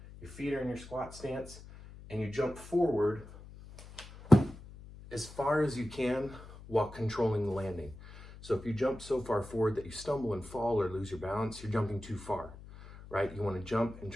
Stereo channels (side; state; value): left; noise; hum, 16 dB below the sound